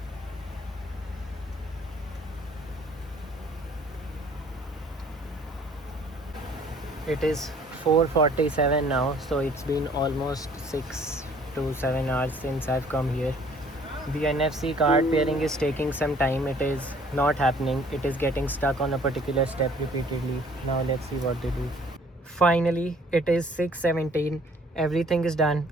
It is 4:47 now, so it's been almost 6 to 7 hours since I've come here. The NFC card pairing is taking some time. It is not happening. It is getting stuck on a particular step repeatedly. Now let's see what they do. Finally, it is 6:17. Everything is done.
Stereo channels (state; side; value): normal; both; correlation 0.57